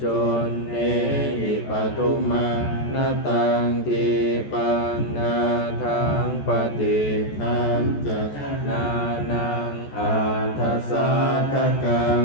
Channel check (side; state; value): right; late; 14 ms